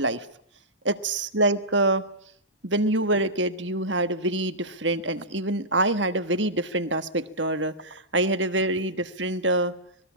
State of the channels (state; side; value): normal; both; correlation -0.16